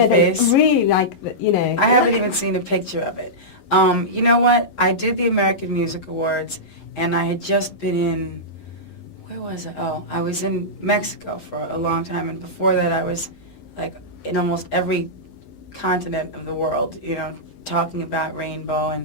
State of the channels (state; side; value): late; right; 11 ms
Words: face. Really like you know. I haven't even seen a picture of it. You know what? I did the American Music Awards, and I had just been in. Where was I? Oh, I was in Mexico for a long time, and before that, I was like in almost every continent of the world. You know, talking about Rainbow